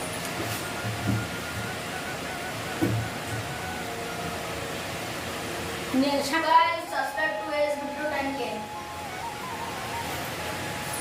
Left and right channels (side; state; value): both; identical; correlation 1.00